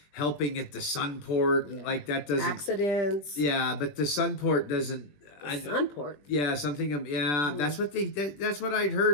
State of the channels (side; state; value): right; late; 20 ms